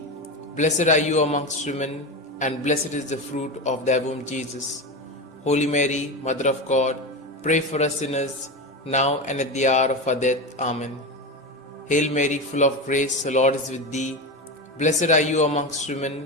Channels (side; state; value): both; normal; correlation 0.20